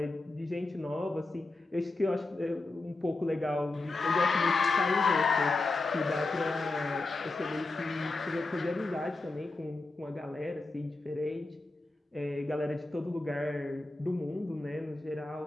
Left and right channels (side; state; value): right; quieter; 3.2 dB